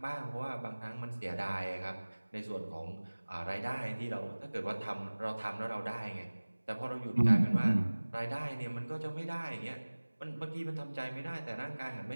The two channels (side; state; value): both; inverted; correlation -1.00